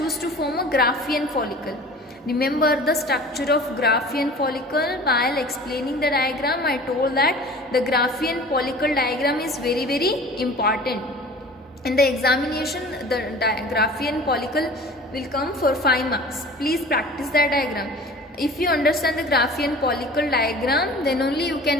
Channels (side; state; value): both; normal; correlation 0.42